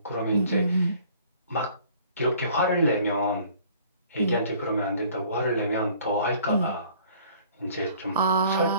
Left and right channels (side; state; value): both; inverted; correlation -0.54